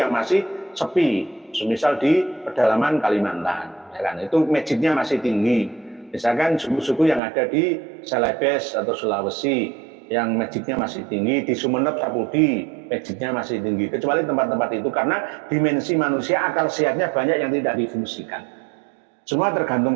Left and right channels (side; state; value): left; drops out; at 7.2 s